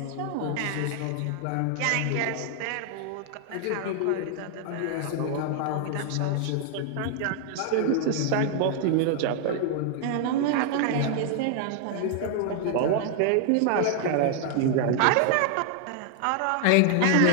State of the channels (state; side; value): different; both; correlation 0.00